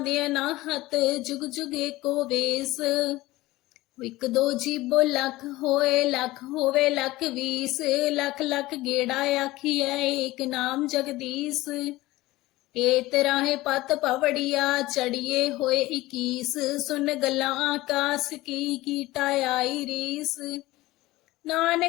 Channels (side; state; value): right; quieter; 18.5 dB